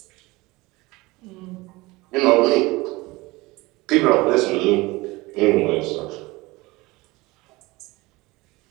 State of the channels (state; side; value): quieter; left; 21.9 dB